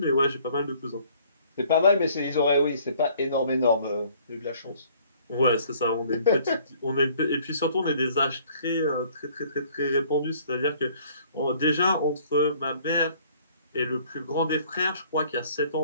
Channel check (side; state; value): both; inverted; correlation -0.58